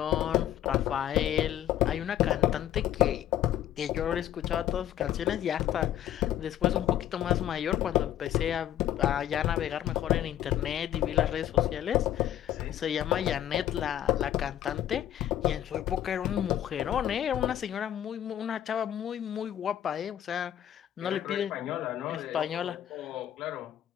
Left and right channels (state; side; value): quieter; right; 11.6 dB